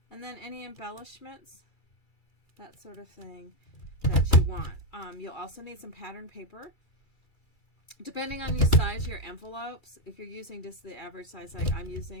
and then any embellishments, that sort of thing that you want. You'll also need some pattern paper. Depending on the size of your envelopes, if you're using just the average size, like I'm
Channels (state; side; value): late; right; 2.3 ms